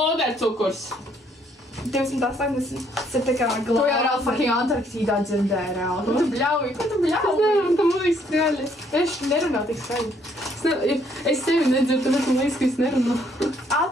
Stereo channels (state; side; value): normal; both; correlation 0.67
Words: 280. Tas ir tā kā Tu jau glāzi. reāli fucking Antarktīdā dzirdēji reāli. Ko tu bļauji? Ko tu bļauji? Nē, tam liekas skaļi. Es nerunāju tik skaļi. Es tevi nedzirdu, tāpēc man liekas, ka es nerunāju.